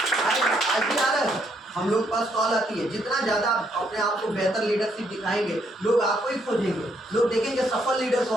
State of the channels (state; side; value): normal; both; correlation 0.72